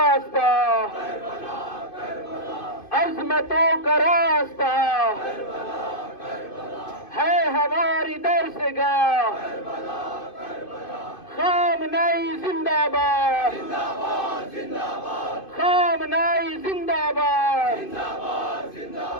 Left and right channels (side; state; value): right; late; 2.5 ms